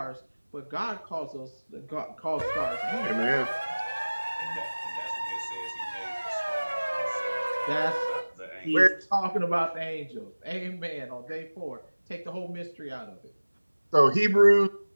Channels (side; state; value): both; inverted; correlation -1.00